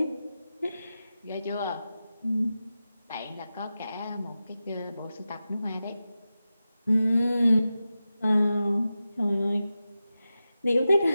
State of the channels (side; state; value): both; inverted; correlation -0.92